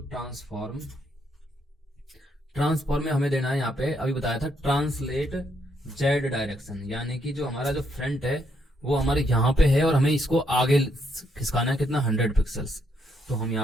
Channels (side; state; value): both; normal; correlation 0.75